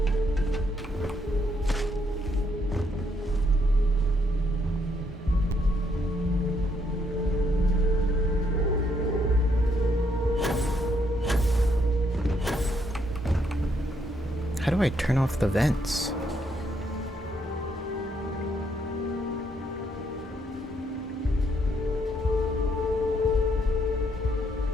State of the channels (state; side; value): normal; both; correlation 0.74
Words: how do I turn off the vents?